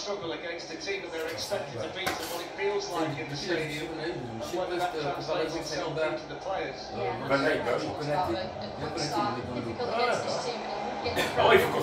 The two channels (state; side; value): identical; both; correlation 1.00